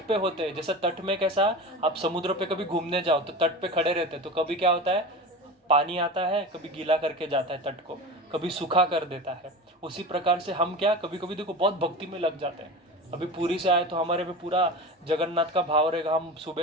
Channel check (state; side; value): normal; both; correlation 0.29